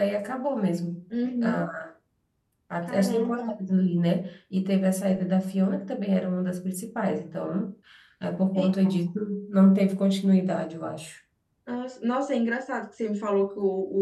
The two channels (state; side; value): identical; both; correlation 1.00